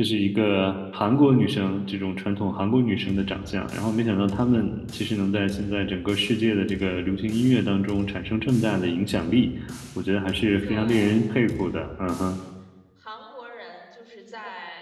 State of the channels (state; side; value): identical; both; correlation 1.00